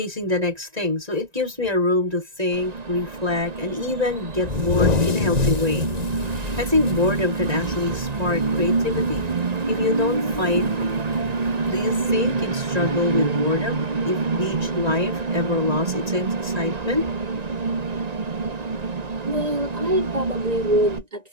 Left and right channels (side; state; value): left; late; 1.9 ms